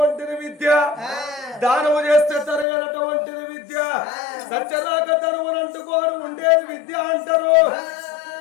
విద్య దానము చేస్తే తరగనటువంటిది విద్య సత్యరాక తరువునంటుకోరు ఉండేది విద్య అంటారు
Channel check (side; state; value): right; drops out; at 2.7 s